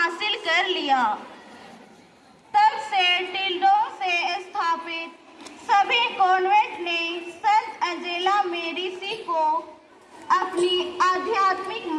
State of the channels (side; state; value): both; identical; correlation 1.00